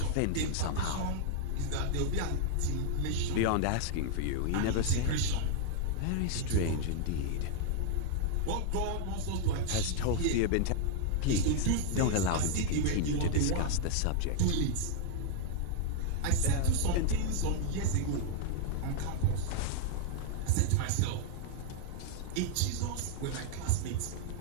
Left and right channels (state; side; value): different; both; correlation 0.00